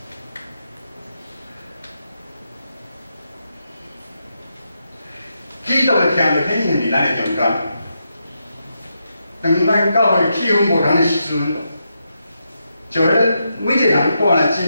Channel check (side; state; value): both; inverted; correlation -0.84